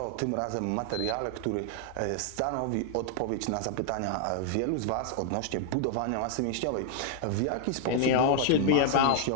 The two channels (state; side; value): different; both; correlation 0.00